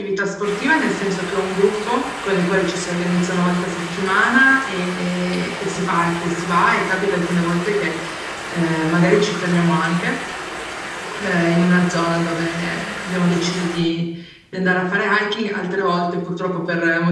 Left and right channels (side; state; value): both; identical; correlation 1.00